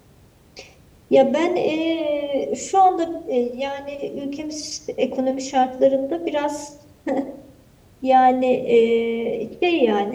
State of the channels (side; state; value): both; identical; correlation 1.00